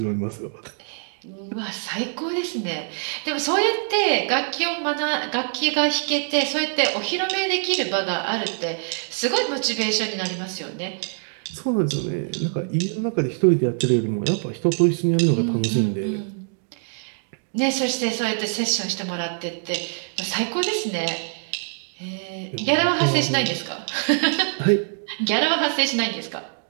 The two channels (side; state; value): left; silent; digital silence